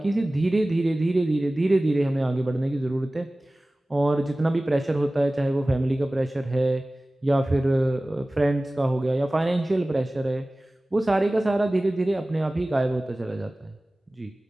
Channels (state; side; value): normal; both; correlation 0.98